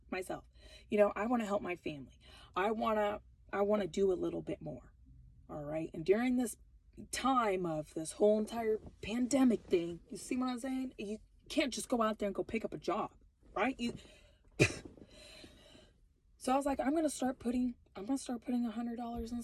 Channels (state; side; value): identical; both; correlation 1.00